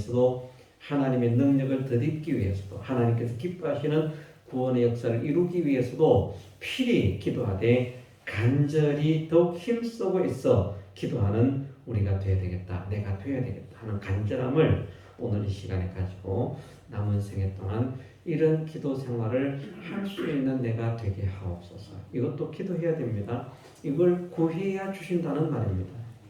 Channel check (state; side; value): identical; both; correlation 1.00